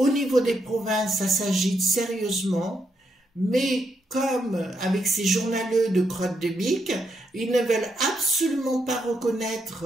niveau des provinces, ça s'agite sérieusement, mais comme avec ces journaleux de crotte de bique, ils ne veulent absolument pas reconnaître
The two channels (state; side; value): normal; both; correlation 0.79